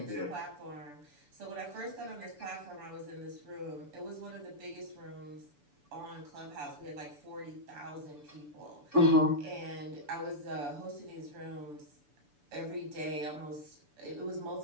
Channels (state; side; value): late; left; 6.9 ms